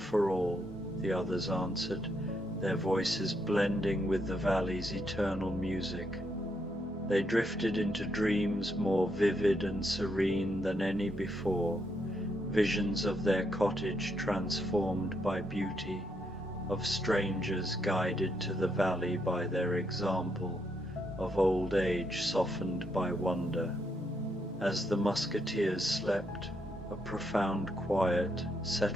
all," the others answered, their voices blending with the valley's eternal music. They drifted into dreams more vivid and serene than any before, visions of their cottage transformed by beauty, of strangers guided to the valley by their example, of old age softened by wonder. As the Musketeers slept, a profound quiet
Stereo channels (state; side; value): normal; both; correlation 0.78